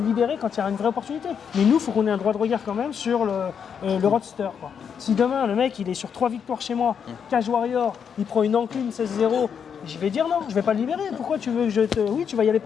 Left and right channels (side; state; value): right; quieter; 7.3 dB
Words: quand il y a une vraie opportunité. Mais nous, il faut qu'on ait un droit de regard quand même sur le roadster, quoi. Si demain, le mec, il est sur 3 victoires chez moi, Cage Warrior, il prend une encline 16-0, je vais dire non, je vais pas le libérer. Pourquoi tu veux que je te. Oui, tu vas y aller